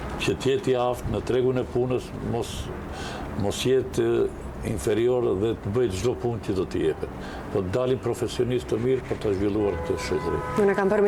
që të jetë i aftë në tregun e punës, mos jetë inferior dhe të bëjë çdo punë që do t'i jepet. Po të dalin profesionistë të mirë për të zhvilluar këtë shoqëri. Unë kam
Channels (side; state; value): both; identical; correlation 1.00